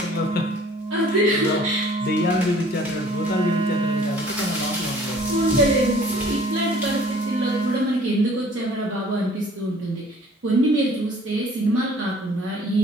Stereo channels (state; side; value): normal; both; correlation 0.53